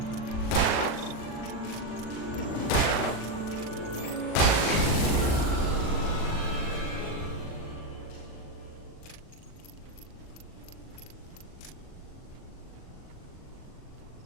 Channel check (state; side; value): late; right; 39 ms